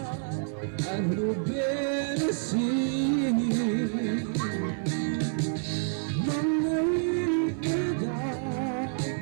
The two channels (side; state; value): left; silent; 55 dB below the other